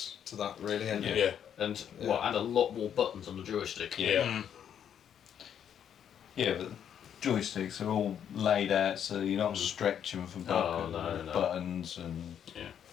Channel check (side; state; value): right; quieter; 9.0 dB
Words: to that, really, haven't you? Yeah. And and a lot more buttons on the joystick. Yeah. Yeah, but joysticks are all laid out so you're not stretching for buttons and